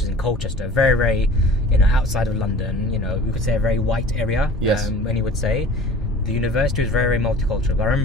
is in Colchester, very, very, outside of London. We could say a very white area. When you would say, the university was very, very multicultural. I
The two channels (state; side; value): normal; both; correlation 0.43